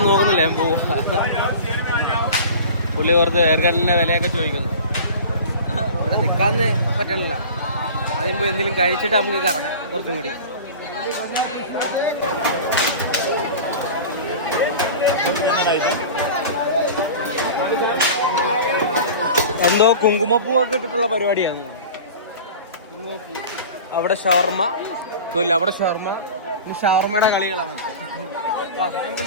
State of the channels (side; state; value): both; inverted; correlation -0.36